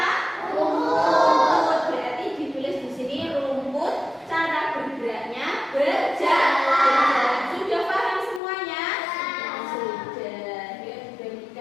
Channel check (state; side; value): drops out; right; at 8.4 s